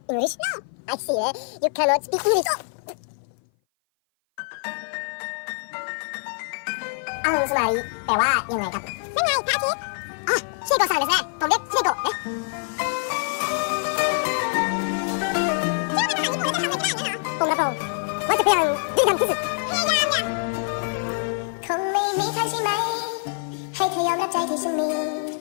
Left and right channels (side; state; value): right; silent; 57 dB below the other